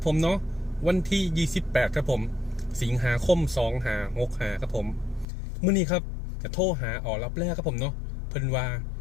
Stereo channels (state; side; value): drops out; right; at 5.2 s